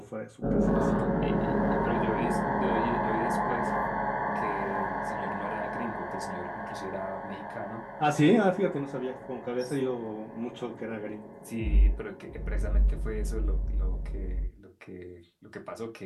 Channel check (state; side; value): identical; both; correlation 1.00